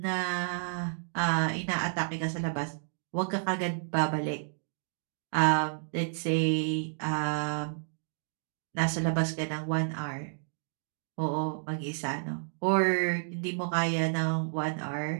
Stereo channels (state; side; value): silent; left; digital silence